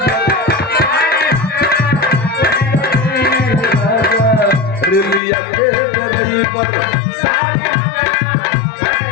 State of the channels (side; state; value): right; drops out; at 5.2 s